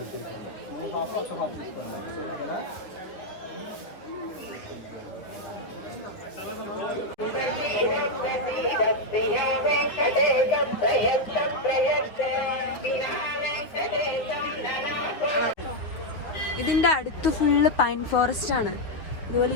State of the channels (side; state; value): right; late; 9.6 ms